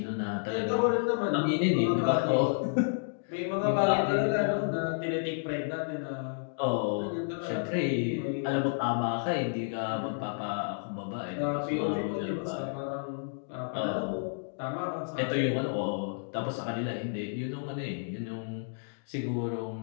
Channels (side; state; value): right; silent; digital silence